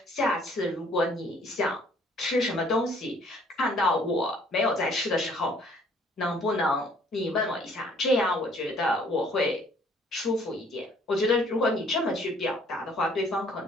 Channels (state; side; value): normal; both; correlation 0.60